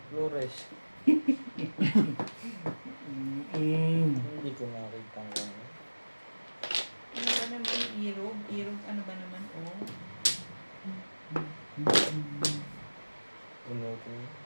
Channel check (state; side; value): inverted; both; correlation -1.00